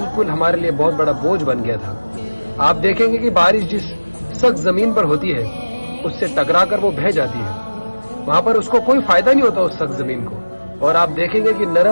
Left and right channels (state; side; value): inverted; both; correlation -1.00